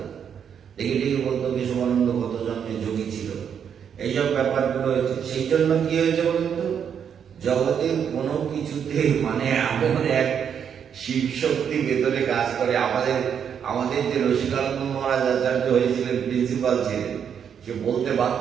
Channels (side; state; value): left; quieter; 7.9 dB